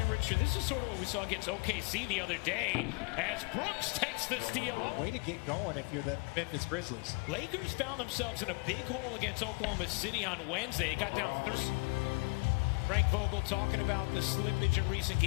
Richard, this is sort of what we saw against OKC the other day as Brooks takes the steal. Way to get going if you're the Memphis Grizzlies. Lakers found themselves in a big hole against Oklahoma City on Wednesday. It got down 30. Frank Vogel talking about the slippage in recent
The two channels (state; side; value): quieter; right; 31.0 dB